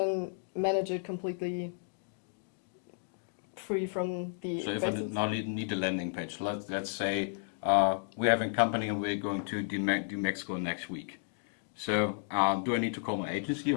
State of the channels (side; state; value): right; silent; digital silence